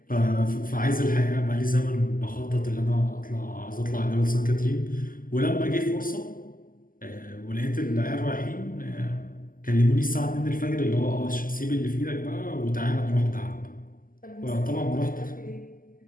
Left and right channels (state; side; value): late; right; 0.41 ms